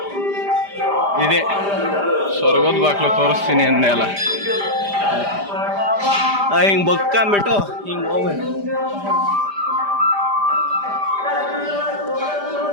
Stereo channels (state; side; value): late; left; 5.0 ms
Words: ಇದೆ ಸ್ವರ್ಗದ ಬಾಕ್ಲು ತೋರಿಸ್ತೀನಿ ಅಂದೆ ಅಲ್ಲ. ಹಿಂಗೆ ಬಕ್ಕೊಂಬಿಟ್ಟು ಹಿಂಗೆ ಹೋಗ್ಬೇಕು.